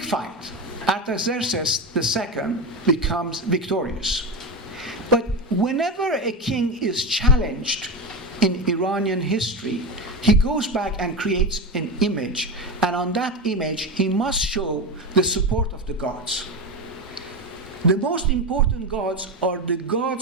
fight. Artaxerxes II becomes victorious. But whenever a king is challenged in Iranian history, he goes back and creates an image, and on that image he must show the support of the gods. The most important gods are the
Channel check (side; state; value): both; normal; correlation 0.18